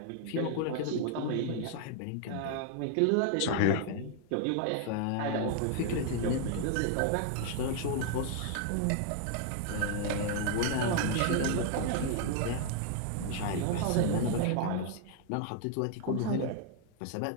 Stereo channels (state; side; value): different; both; correlation 0.00